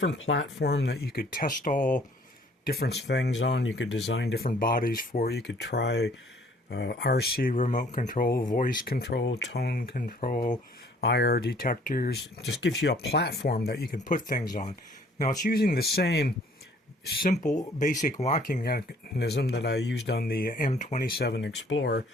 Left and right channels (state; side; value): normal; both; correlation 0.58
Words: platform that you could test all different things on. You could design different bodies for. You could try RC remote control, voice control, tone control, IR detectors. It just gives you a platform that you can put things on. Now it's using the same simple basic locking mechanism that I used on the M27 Explorer,